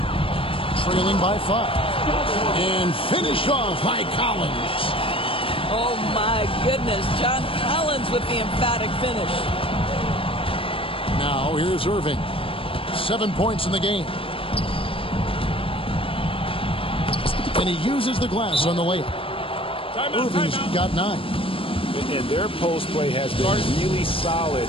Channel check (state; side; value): late; right; 0.26 ms